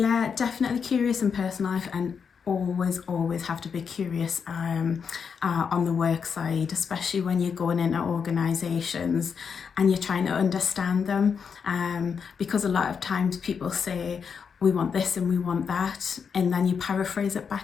definitely curious in personal life, and always have to be curious on the work side, especially when you're going into organisations and you're trying to understand them, because a lot of times people say we want this and we want that, and then you paraphrase it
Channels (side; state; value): right; quieter; 6.4 dB